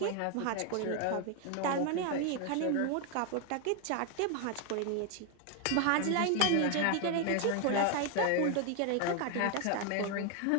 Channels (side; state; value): both; different; correlation 0.01